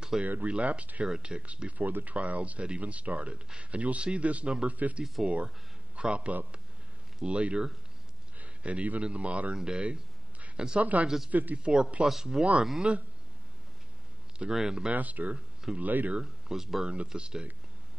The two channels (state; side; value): normal; both; correlation 0.95